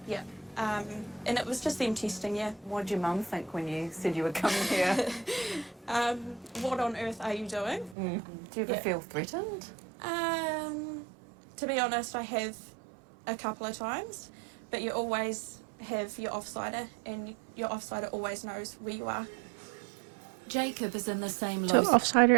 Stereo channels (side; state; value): left; drops out; at 8.0 s